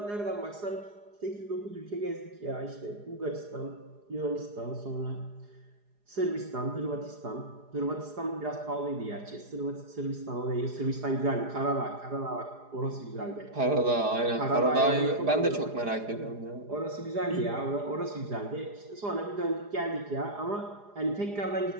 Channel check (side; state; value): left; late; 4.9 ms